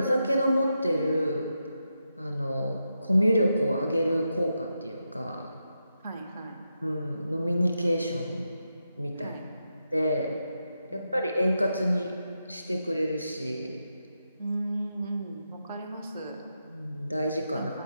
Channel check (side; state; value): both; inverted; correlation -0.86